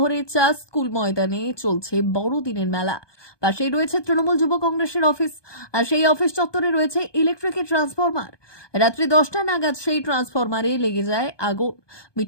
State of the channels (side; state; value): right; late; 1.2 ms